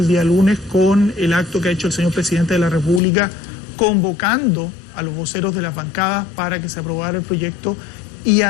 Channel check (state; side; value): drops out; right; at 3.0 s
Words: día lunes con el acto que ha hecho el señor presidente de la República, convocando a los voceros de las bancadas para que se aprobara el proyecto, y